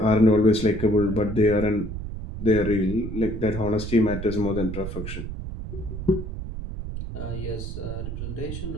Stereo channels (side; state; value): right; noise; rumble, 7 dB below the sound